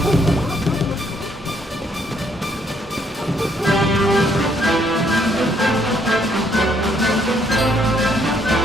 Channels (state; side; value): normal; both; correlation 0.69